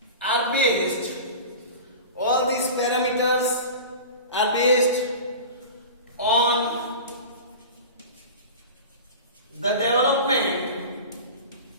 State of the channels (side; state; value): both; inverted; correlation -0.33